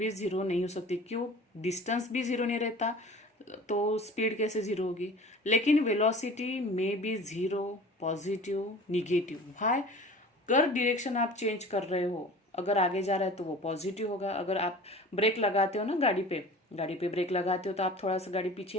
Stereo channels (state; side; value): normal; both; correlation 0.42